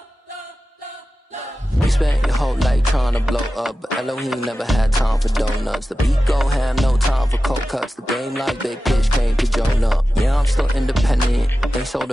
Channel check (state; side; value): normal; both; correlation 0.94